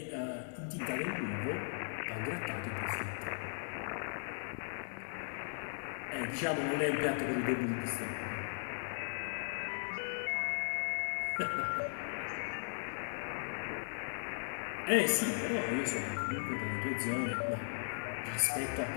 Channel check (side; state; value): right; silent; digital silence